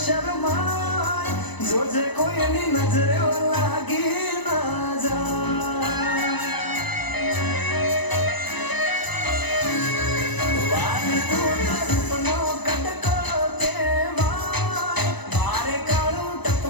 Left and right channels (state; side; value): late; right; 1.0 ms